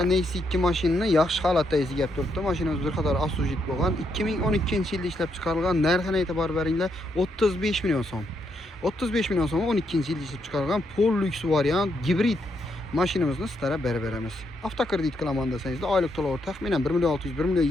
Nexia 2 mashinani yaxshi holatda izlab turibdi. Mashinamiz bir qator asujit bo'lgan. 2012-yilda ishlab chiqarilgan. Narxini e'tibor beringlar, 35 million so'm. 35 million so'm 12-yilda ishlab chiqarilgan pol lyuks variant gibrid mashinamizni sizlarga berib beramiz. Avtokredit qilaman desangizda oylik to'lovi taxminan 1 million 600 1 million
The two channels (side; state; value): both; normal; correlation 0.78